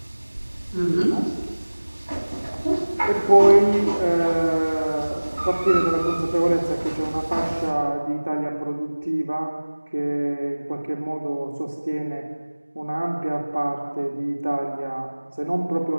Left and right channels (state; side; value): inverted; both; correlation -1.00